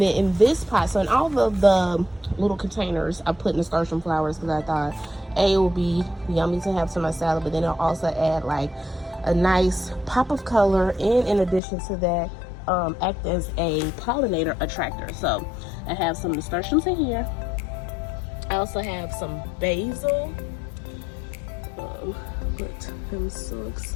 then in this pot, so in all of the little containers, I put nasturtium flowers because I thought it would be yummy to have to my salad, but then I'll also add like a nice pop of color, and in addition to that, act as a pollinator attractor. So I have some nasturtiums in here. I also have some basil. But I'm so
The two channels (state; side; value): drops out; right; at 11.6 s